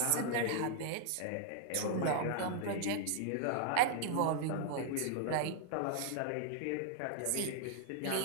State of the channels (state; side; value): different; both; correlation -0.01